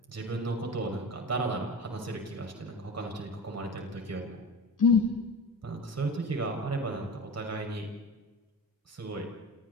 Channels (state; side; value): normal; both; correlation 0.31